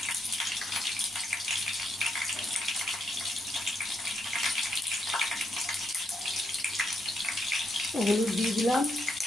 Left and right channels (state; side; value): normal; both; correlation 0.78